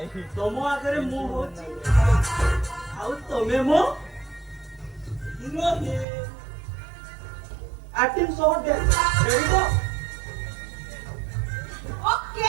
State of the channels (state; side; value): drops out; left; at 6.1 s